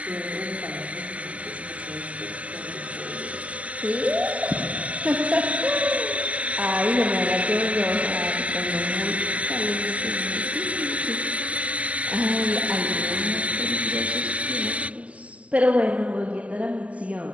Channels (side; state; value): left; late; 0.066 ms